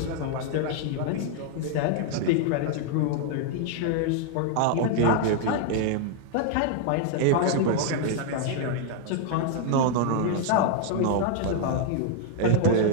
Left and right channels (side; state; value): both; different; correlation 0.00